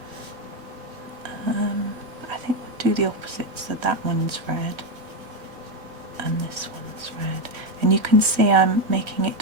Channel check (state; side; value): late; left; 3.1 ms